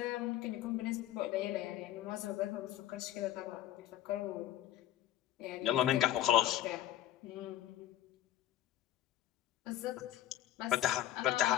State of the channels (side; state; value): right; quieter; 12.7 dB